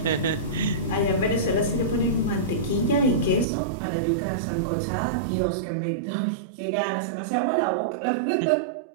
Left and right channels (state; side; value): drops out; left; at 3.5 s